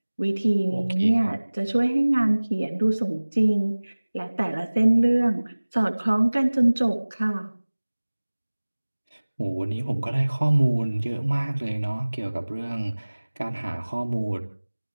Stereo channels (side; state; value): both; inverted; correlation -1.00